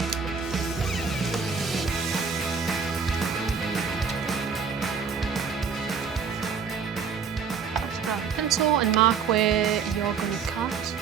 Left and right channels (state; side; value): quieter; left; 6.1 dB